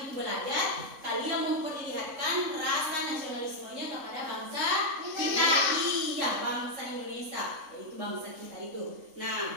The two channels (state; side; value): late; left; 3.6 ms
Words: itu belajar, kalian memperlihatkan rasa nasionalismenya kepada bangsa kita. Iya, bangsa Indonesia, yaitu bangsa kita itu.